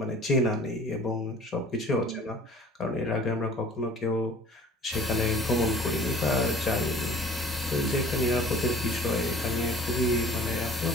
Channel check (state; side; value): normal; both; correlation 0.47